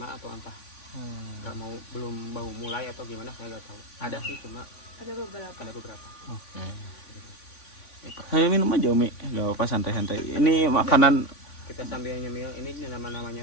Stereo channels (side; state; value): right; late; 3.5 ms